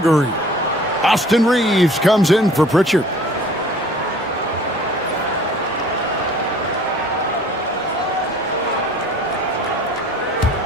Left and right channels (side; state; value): both; normal; correlation 0.50